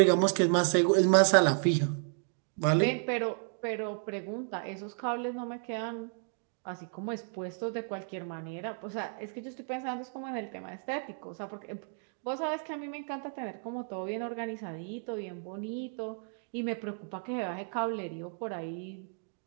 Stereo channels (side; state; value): left; silent; 56 dB below the other